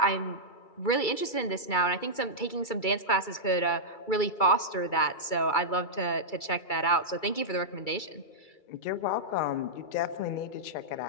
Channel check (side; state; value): right; late; 2.3 ms